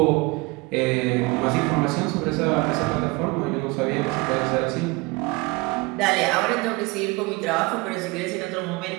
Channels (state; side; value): quieter; left; 25.1 dB